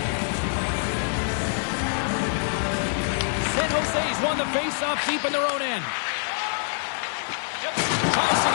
San Jose's won the face-off deep in their own end. Tries to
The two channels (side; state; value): right; silent; 61 dB below the other